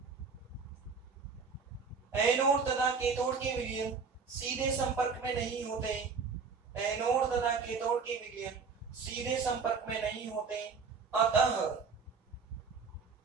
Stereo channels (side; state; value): left; quieter; 5.2 dB